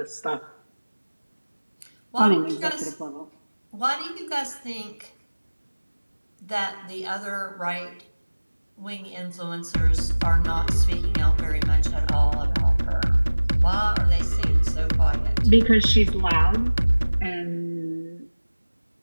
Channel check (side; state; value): both; inverted; correlation -1.00